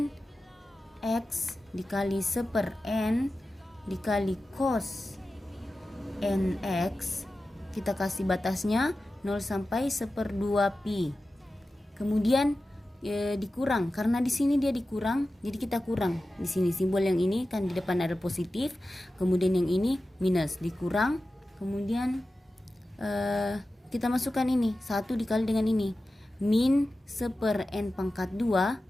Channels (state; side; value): normal; both; correlation 0.94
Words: x dikali 1/n dikali cos nx, kita kasih batasnya 0 sampai 1/2pi. Kemudian dikurang, karena di sini dia dikurang, jadi kita kurang. Di sini simbol yang ini kan di depan ada positif, kemudian yang ini minus, dikurang. Kemudian kita masukkan ini 1 dikali dengan ini, min 1/n pangkat 2